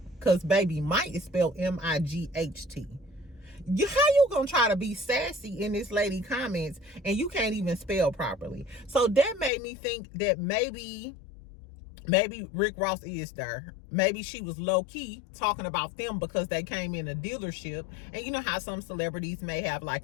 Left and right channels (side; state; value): right; drops out; at 9.5 s